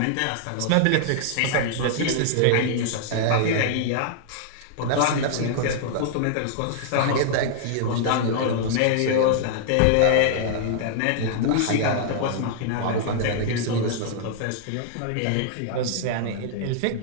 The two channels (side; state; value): both; different; correlation -0.01